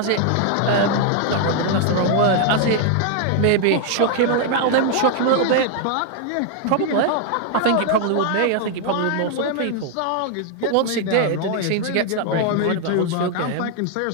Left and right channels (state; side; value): different; both; correlation 0.00